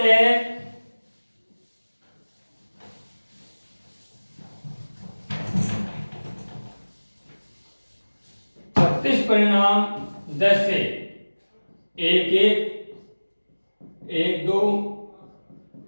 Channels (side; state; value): both; inverted; correlation -1.00